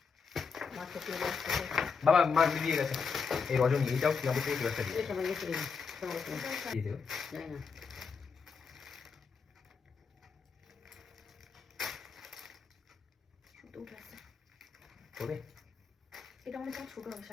মাছ তো দিয়ে বাবা মা দিয়ে গেছে এই রজনী এইটাও কি আমাদের থেকে একটা দিয়ে এই সময় গেছে সময় এটাও শাড়ি দিয়ে দেবো জানি না সুতো উঠে আসছে তবে এটা মনে হচ্ছে ছোট হবে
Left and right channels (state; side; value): quieter; right; 5.5 dB